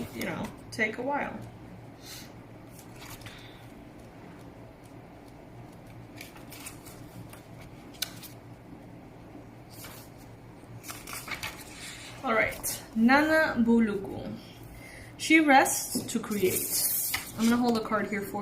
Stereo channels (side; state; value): both; identical; correlation 1.00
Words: take a while. Alright, Nana Buluku. She rests to create. I'm going to hold a card here